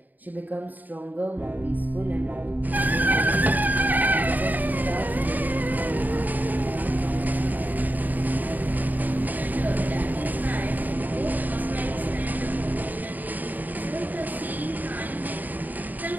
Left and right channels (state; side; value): late; left; 0.084 ms